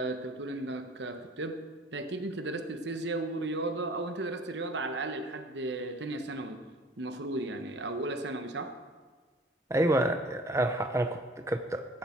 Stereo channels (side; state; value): both; normal; correlation 0.48